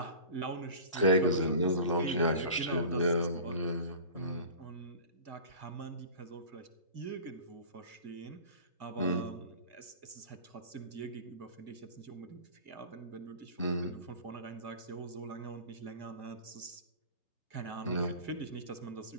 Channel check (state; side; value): inverted; both; correlation -0.39